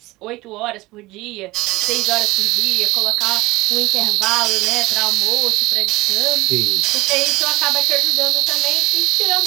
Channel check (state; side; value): quieter; left; 20.1 dB